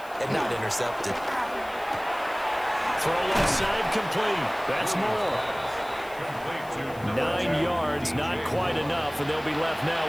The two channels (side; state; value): left; noise; hiss, 22 dB below the sound